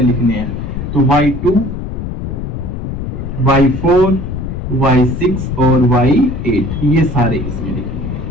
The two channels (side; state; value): left; noise; rumble, 5 dB below the sound